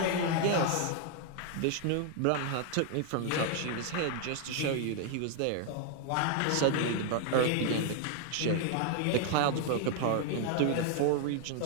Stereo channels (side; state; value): both; different; correlation 0.00